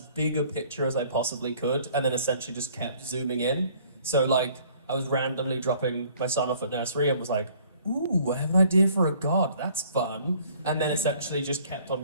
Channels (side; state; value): both; inverted; correlation -0.57